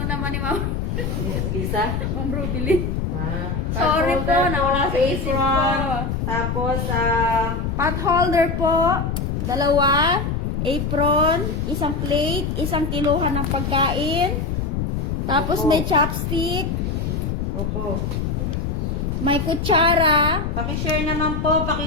naman ni Ma'am. Lisa? Ma'am Rubilin. Ah. Sorry Pot po, holder nawala sa isip ko. apron. Tapos, Pot holder po. 2. Apron. Isang plate. Isang kiluhan ng pagkain. Tapos Opo. may chopstick. opo. May kutsara. Pakishare naman po,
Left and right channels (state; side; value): noise; left; rumble, 1 dB below the sound